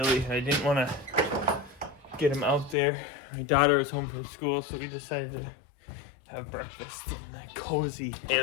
I didn't want to get them out there. My daughter was home from school, so we decided to have breakfast in the cozy. Hey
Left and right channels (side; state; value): right; drops out; at 2.8 s